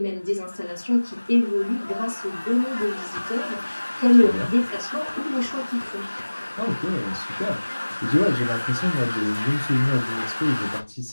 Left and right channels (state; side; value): inverted; both; correlation -1.00